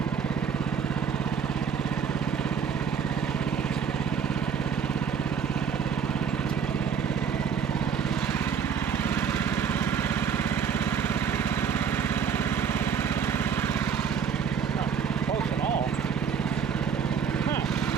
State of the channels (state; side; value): quieter; left; 7.2 dB